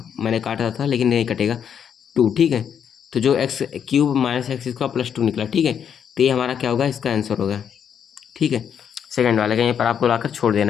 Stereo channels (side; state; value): right; quieter; 8.1 dB